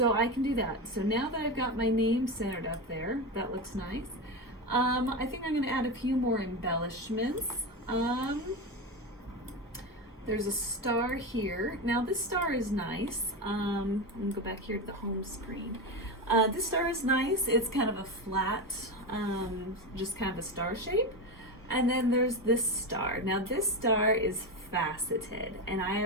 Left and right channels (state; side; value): normal; both; correlation 0.18